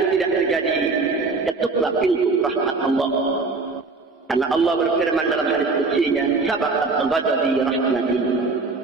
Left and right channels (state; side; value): quieter; left; 3.9 dB